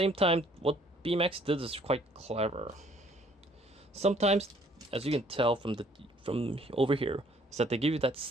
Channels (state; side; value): normal; both; correlation 0.60